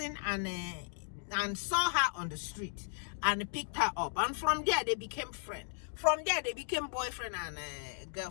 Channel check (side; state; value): right; silent; digital silence